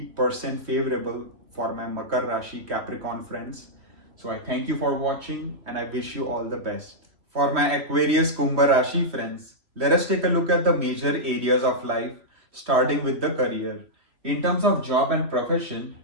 favorable for my Makar Rashi Capricorn friends. So I thank you for watching and I wish you all the best. For my Aquarius Kumbha Rashi friends, let us take a look at the major areas of life, starting with the career. In terms of job and profession,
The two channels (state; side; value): late; left; 3.0 ms